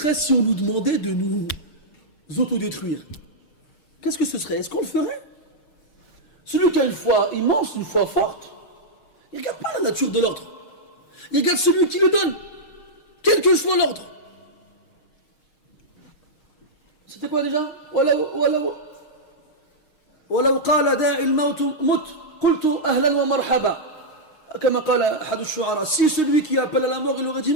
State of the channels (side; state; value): right; late; 6.5 ms